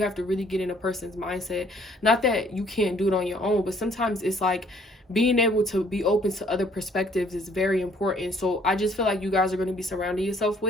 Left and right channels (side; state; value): both; normal; correlation 0.61